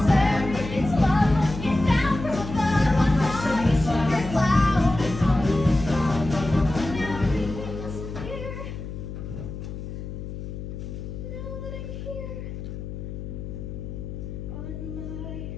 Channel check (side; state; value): left; noise; hum, 8 dB below the sound